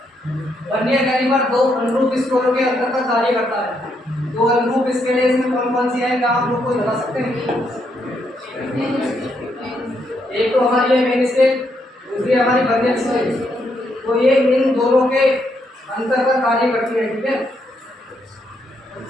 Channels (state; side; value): normal; both; correlation 0.77